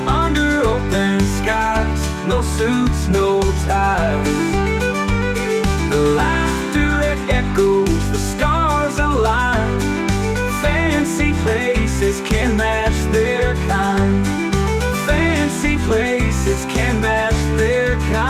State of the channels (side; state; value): both; identical; correlation 1.00